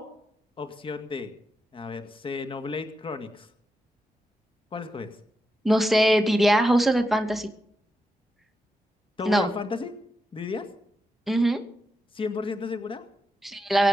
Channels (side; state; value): both; normal; correlation 0.87